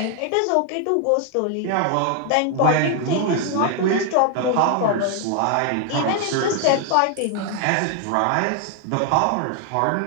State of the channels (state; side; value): different; both; correlation 0.00